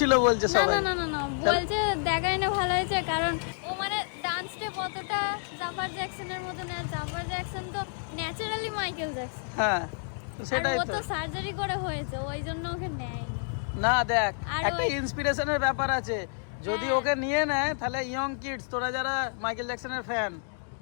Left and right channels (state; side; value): silent; right; digital silence